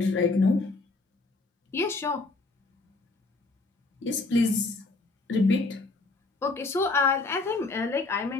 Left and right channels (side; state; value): right; quieter; 3.5 dB